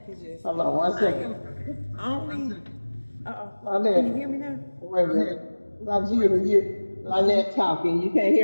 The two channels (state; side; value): inverted; both; correlation -1.00